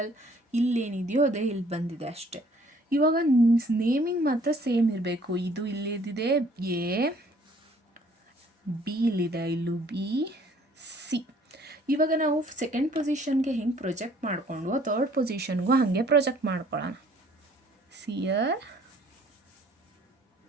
ಇಲ್ಲೇನಿದೆಯೋ ಅದೇ ಇಲ್ಲಿ ಬಂದಿದೆ ಅಷ್ಟೆ. ಇವಾಗ ನೇಮಿಂಗ್ ಮಾತ್ರ ಸೇಮ್ ಇರಬೇಕು. ಇದು ಇಲ್ಲಿದೆ ಎ, ಬಿ ಇಲ್ಲಿದೆ, ಇಲ್ಲೂ ಬಿ, ಸಿ. ಇವಾಗ ನಾವು ಸೆಕೆಂಡ್ ಪೊಸಿಷನ್ಗೆ ಹೆಂಗೆ ಪ್ರೊಜೆಕ್ಟ್ ಮಾಡಿಕೊಂಡು ಥರ್ಡ್ ಪೊಸಿಷನ್ಗೂ ಹಾಗೆ ಪ್ರೊಜೆಕ್ಟ್ ಮಾಡ್ಕೊಳ್ಳೋಣ. ಸಿಯರ್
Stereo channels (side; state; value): both; normal; correlation 0.58